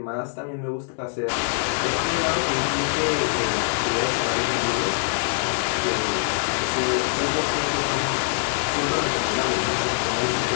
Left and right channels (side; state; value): right; silent; digital silence